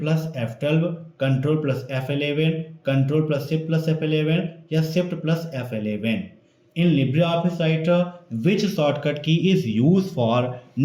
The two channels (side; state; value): both; identical; correlation 1.00